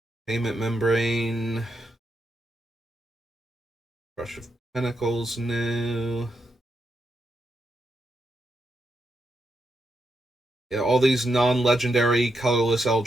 Payment membrane. Crush of Pentacles, no. Yeah, all these non-legendary colorless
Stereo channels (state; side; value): normal; both; correlation 0.83